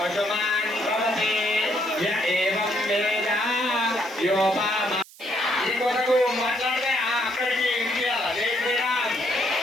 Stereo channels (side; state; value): right; noise; hiss, 22 dB below the sound